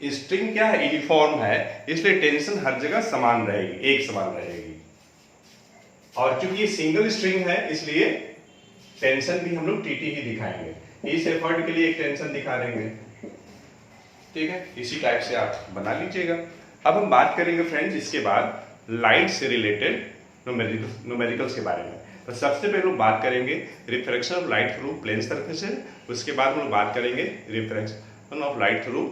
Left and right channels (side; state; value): both; identical; correlation 1.00